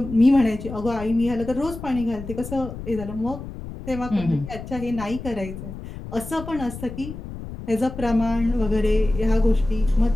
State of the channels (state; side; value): noise; left; rumble, 11 dB below the sound